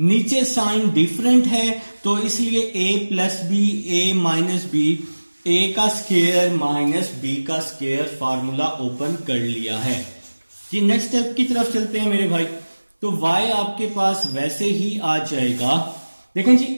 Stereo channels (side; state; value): both; inverted; correlation -1.00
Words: साइन डिफरेंट है तो इसलिए a plus B a minus B, a का स्क्वायर माइनस b का स्क्वायर, फार्मूला ओपन कर लिया है जी। नेक्स्ट स्टेप की तरफ चलते हैं मेरे भाई। तो y आपके पास वैसे ही आ जाएगा, देखें जी,